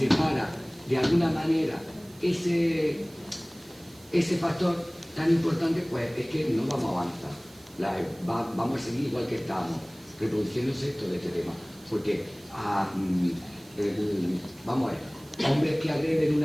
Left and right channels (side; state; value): right; noise; hiss, 25 dB below the sound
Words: para de alguna manera ese factor tan importante, pues es que no vamos a avanzar, vamos a seguir igual que estamos, reproduciéndose todo este tema. Porque, vamos a ver, hombres que agreden